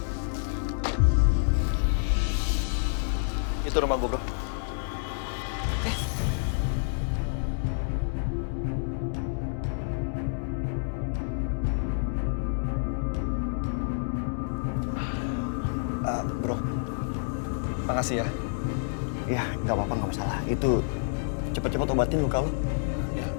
Itu rumah gue, bro. Bro, makasih ya. Ya, nggak apa-apa, nggak masalah. Itu cepet-cepet obatin luka lu.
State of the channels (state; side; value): silent; right; digital silence